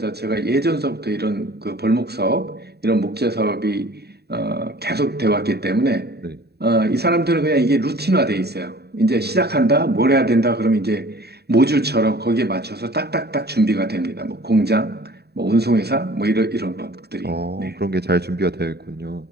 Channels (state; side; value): late; left; 0.47 ms